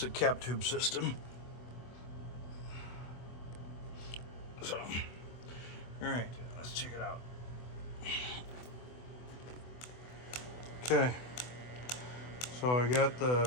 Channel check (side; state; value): right; late; 24 ms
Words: a cap tube system. So, all right, let's check it out. Okay, so I got